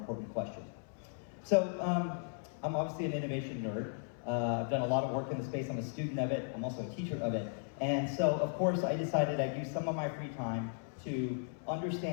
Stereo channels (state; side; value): silent; right; 54 dB below the other